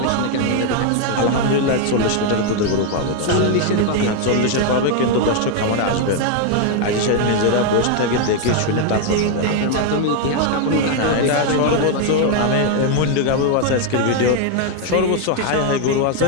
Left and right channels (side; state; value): both; different; correlation 0.01